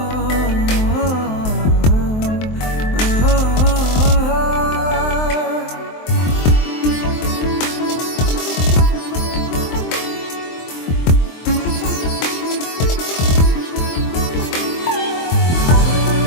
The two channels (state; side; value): late; right; 23 ms